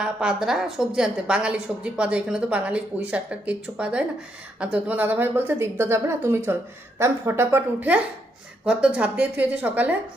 পাদরা সবজি আনতে, বাঙালি সবজি পাওয়া যায় এখানে, তো বাঙালি পুঁই শাকটা কিচ্ছু পাওয়া যায় না। আর তো তোমার দাদাভাই বলছে দীপদা যাবে না, তুমি চল। তা আমি ফটাফট উঠে ঘর তো ঝাঁপ দিয়ে থুয়েছি সকালে।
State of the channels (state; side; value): normal; both; correlation 0.77